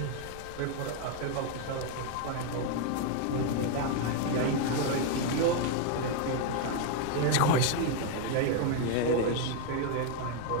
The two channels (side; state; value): both; different; correlation 0.01